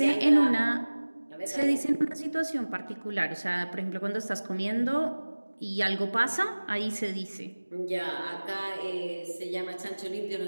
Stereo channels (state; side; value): inverted; both; correlation -1.00